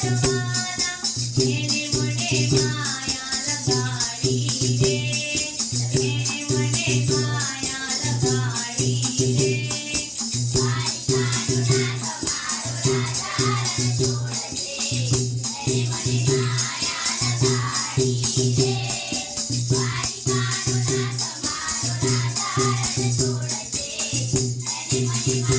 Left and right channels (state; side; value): identical; both; correlation 1.00